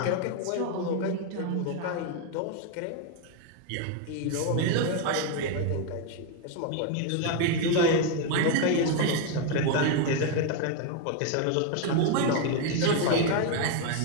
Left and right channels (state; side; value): different; both; correlation 0.01